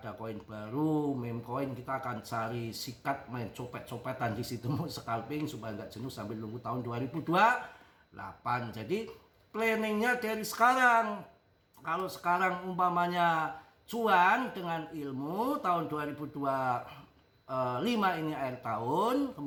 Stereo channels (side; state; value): both; identical; correlation 1.00